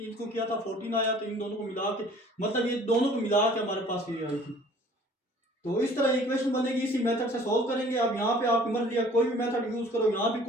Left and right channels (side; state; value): both; normal; correlation 0.52